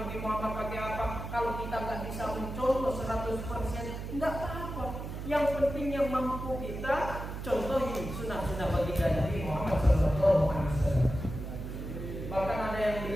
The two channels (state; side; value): noise; right; hum, 7 dB below the sound